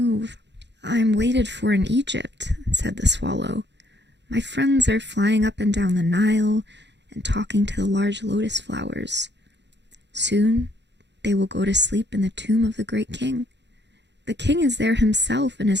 I am waited for in Egypt, said the swallow. My friends are flying up and down the Nile and talking to the large lotus flowers. Soon they will go to sleep in the tomb of the great king. The king is there himself in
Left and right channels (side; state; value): left; late; 0.51 ms